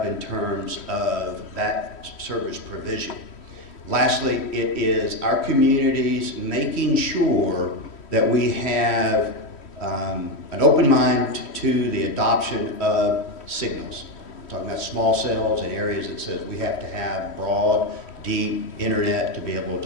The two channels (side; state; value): right; late; 3.1 ms